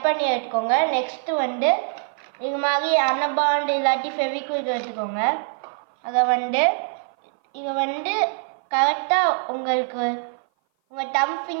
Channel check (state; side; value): silent; left; 57 dB below the other